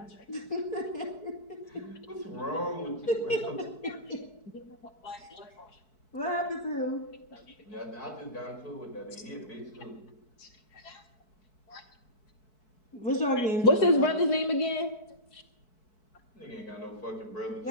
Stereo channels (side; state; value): right; late; 4.6 ms